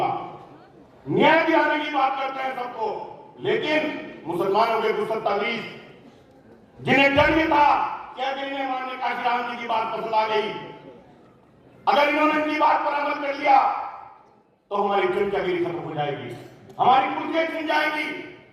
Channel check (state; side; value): identical; both; correlation 1.00